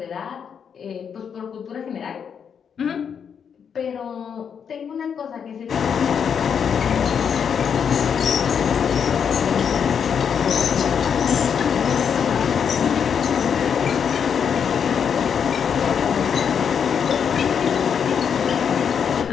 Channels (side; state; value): right; quieter; 7.3 dB